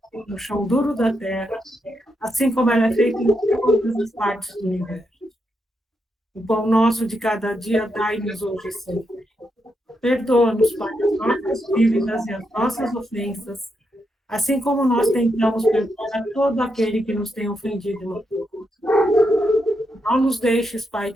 no chão duro da terra, assim como ela é feita em todas as partes do universo. O pão nosso de cada dia dai-nos hoje sempre. Perdoa-nos, Pai, as nossas dívidas e as nossas ofensas, assim como nós tentamos perdoar a todo aquele que nos tem ofendido e magoado. Não nos deixes, Pai,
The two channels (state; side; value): normal; both; correlation 0.82